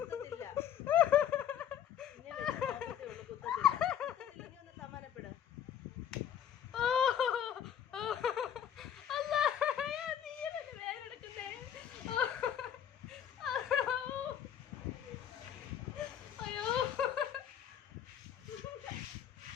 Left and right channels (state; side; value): quieter; right; 9.6 dB